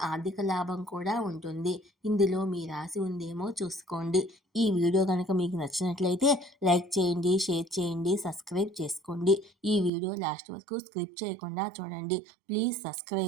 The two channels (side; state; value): left; drops out; at 9.9 s